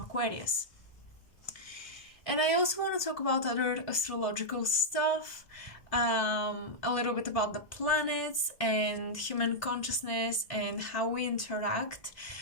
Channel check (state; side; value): late; right; 1.6 ms